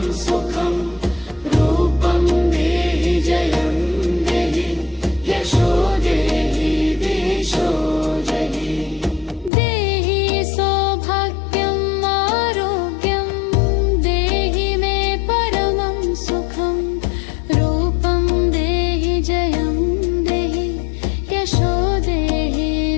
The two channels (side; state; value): right; drops out; at 9.5 s